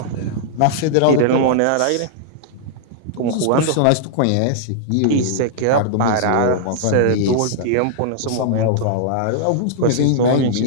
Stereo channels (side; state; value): both; different; correlation -0.01